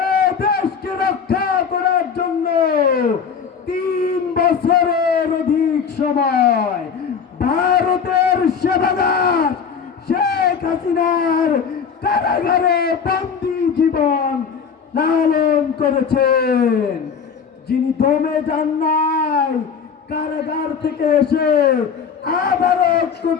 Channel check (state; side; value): quieter; right; 6.5 dB